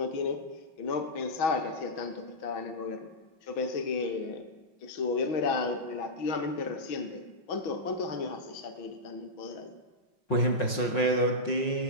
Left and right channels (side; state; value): right; late; 5.5 ms